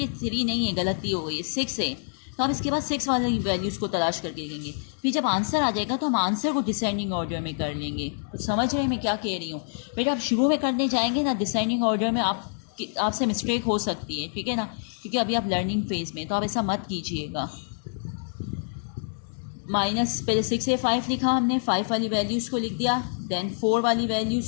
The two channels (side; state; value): right; silent; digital silence